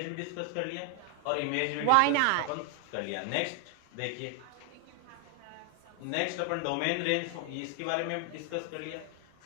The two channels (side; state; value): both; different; correlation 0.00